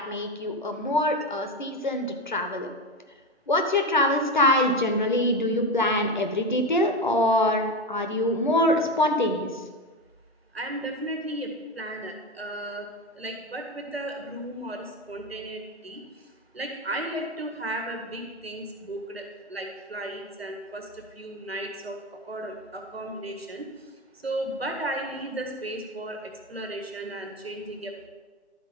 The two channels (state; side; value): normal; both; correlation 0.17